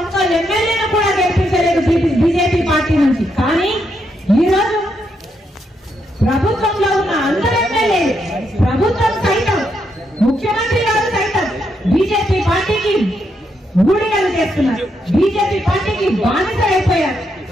ఎమ్మెల్యేను కూడా గెలిపించలేదు బీజేపీ పార్టీ నుంచి. కానీ ఈరోజు ప్రభుత్వంలో ఉన్న అందరు ఎమ్మెల్యేలు, ప్రభుత్వం సైతం, ముఖ్యమంత్రి గారు సైతం బీజేపీ పార్టీకి ఊడిగలు చేస్తున్నారు, బీజేపీ పార్టీకి బానిస అయిపోయారు.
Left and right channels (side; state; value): both; normal; correlation 0.79